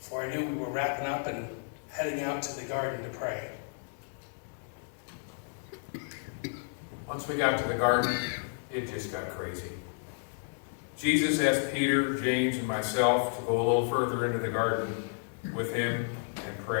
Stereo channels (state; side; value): silent; right; digital silence